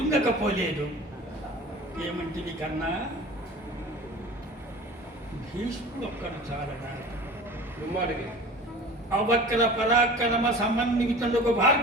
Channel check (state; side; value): normal; both; correlation 0.39